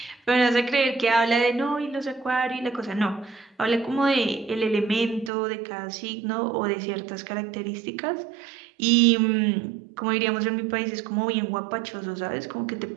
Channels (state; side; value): drops out; left; at 5.3 s